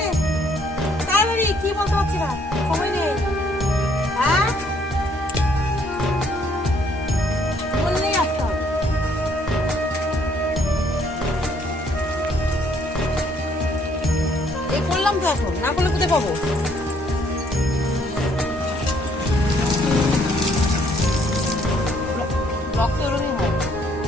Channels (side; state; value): both; normal; correlation 0.66